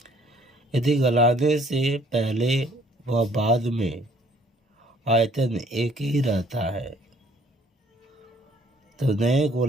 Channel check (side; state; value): both; normal; correlation 0.60